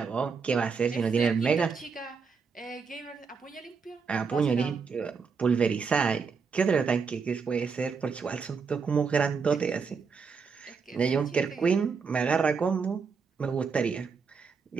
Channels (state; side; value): quieter; left; 5.4 dB